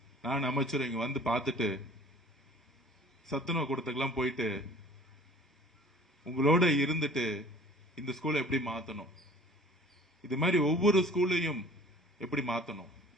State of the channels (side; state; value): both; normal; correlation 0.47